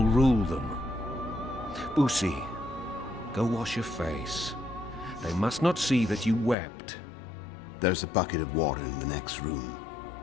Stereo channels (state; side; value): drops out; right; at 6.6 s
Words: rule them. Boosie, go wash your face. They must not see that you wept. There's a bucket of water in the next room.